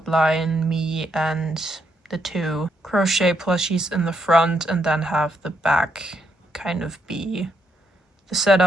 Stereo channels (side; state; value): both; normal; correlation 0.77